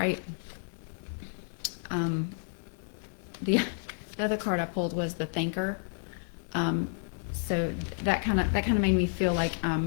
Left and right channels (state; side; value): silent; right; digital silence